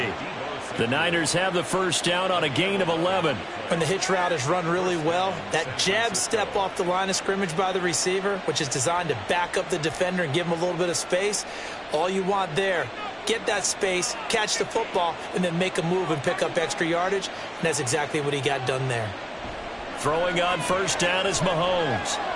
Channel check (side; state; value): both; identical; correlation 1.00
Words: The Niners have the first down on a gain of 11. When the hitch route is run really well, that jab step off the line of scrimmage by the receiver, which is designed to back up the defender and give him a little bit of space, all you want there, get that space, catch the football, and then make a move and pick up extra yardage. And that's exactly what he got done there. Throwing on first down is Mahomes.